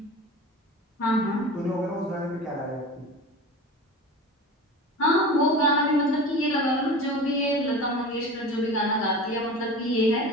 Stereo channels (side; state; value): both; normal; correlation 0.33